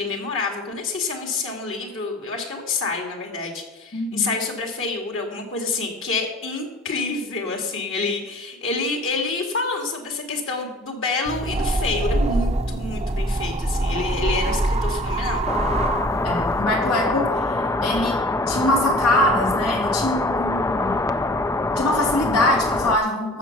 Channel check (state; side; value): normal; both; correlation 0.46